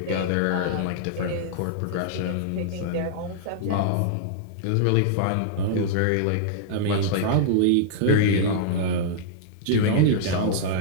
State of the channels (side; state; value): both; different; correlation -0.02